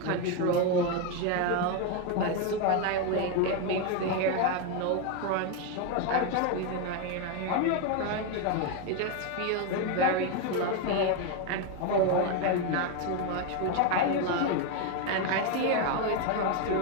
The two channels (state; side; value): different; both; correlation 0.02